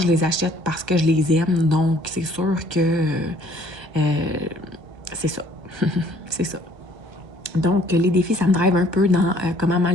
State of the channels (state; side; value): late; left; 1.3 ms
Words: je les achète parce que je les aime, donc c'est sûr que c'est ça. C'est ça. Donc, les défis, ça me drive un peu dans comment